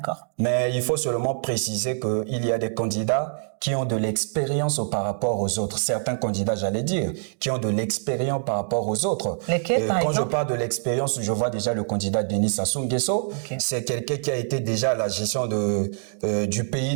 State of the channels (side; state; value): left; silent; digital silence